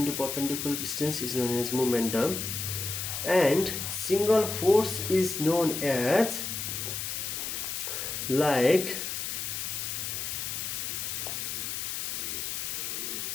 perpendicular distance is known as momentum, and single force is known as, like,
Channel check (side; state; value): left; noise; hiss, 3 dB below the sound